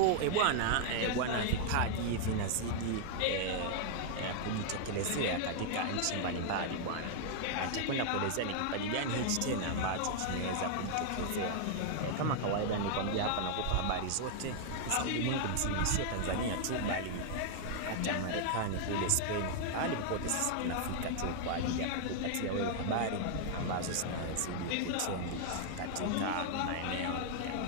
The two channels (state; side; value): different; both; correlation 0.00